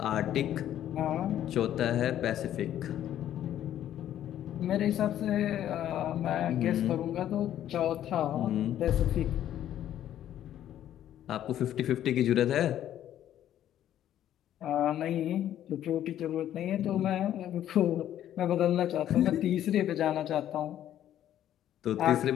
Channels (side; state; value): right; quieter; 11.5 dB